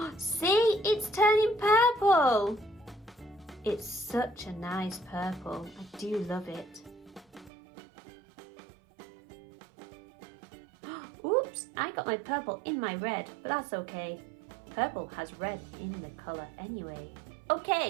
See, it's turning purple. It's such a nice purple, I do love it. Oops, I got my purple in my red, but that's okay. Purple has red in the colour anyway. Okay,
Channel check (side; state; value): left; drops out; at 7.5 s